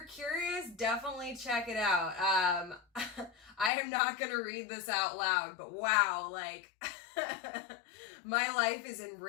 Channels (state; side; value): drops out; right; at 3.7 s